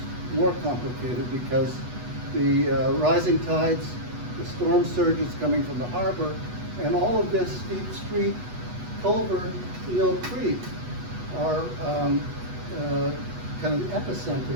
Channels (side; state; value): left; late; 8.2 ms